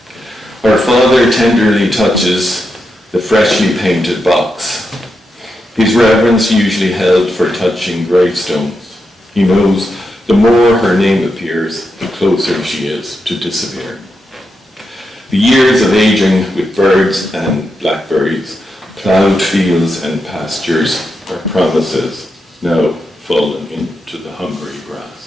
Her father tenderly touches the freshly painted box. His reverence usually held for touching gravestones. He knows the more her name appears, the closer she is to disappear. The years of aging with birds and blackberries, plowed fields and pastures are promises now fallen into the hungry grass.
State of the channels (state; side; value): normal; both; correlation 0.86